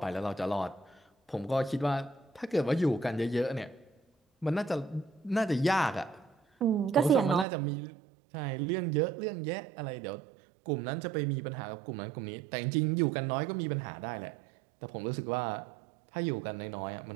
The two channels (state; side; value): drops out; left; at 7.5 s